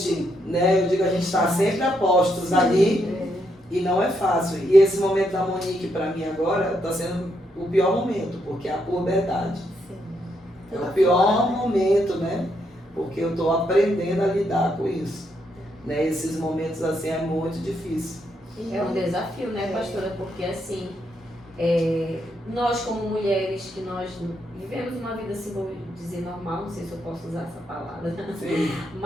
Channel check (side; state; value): both; normal; correlation 0.78